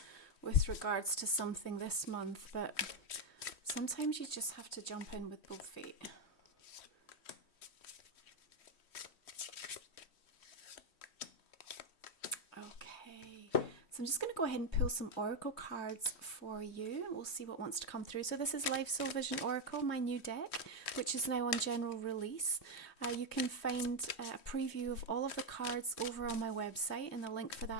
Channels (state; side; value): late; right; 3.1 ms